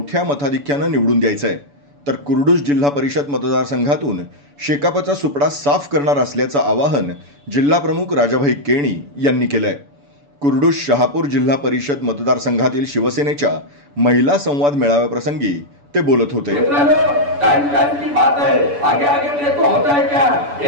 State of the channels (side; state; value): left; late; 7.0 ms